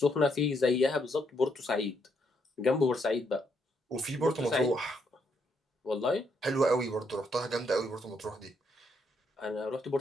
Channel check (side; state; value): both; normal; correlation 0.75